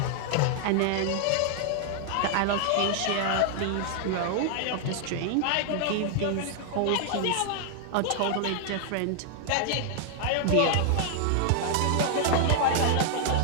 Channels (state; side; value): different; both; correlation 0.00